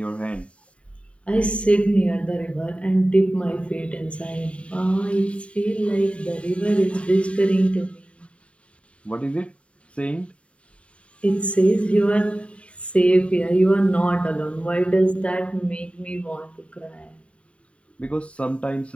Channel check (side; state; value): right; late; 0.061 ms